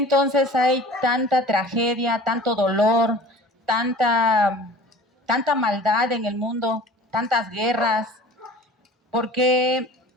hay tanta tragedia, tanto dolor, tanta maldad en el mundo, tantas guerras? ¿Por qué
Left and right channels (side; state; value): both; normal; correlation 0.43